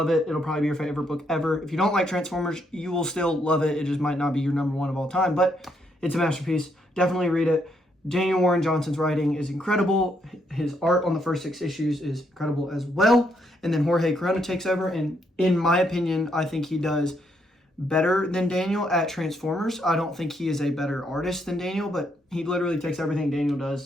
it. It'll probably be your favorite book ever. If you don't like Transformers, you will still love it. It just might not be your number 1 of all time, but it's a masterpiece. Definitely read it. Daniel Warren Johnson's writing is incredible. His art on the first 6 issues is incredible as well. And then Jorge Corona takes over, and in my opinion, I think he does better than Daniel at Transformers. I don't think he is a better artist than Daniel, but he literally takes everything Daniel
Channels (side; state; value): both; normal; correlation 0.75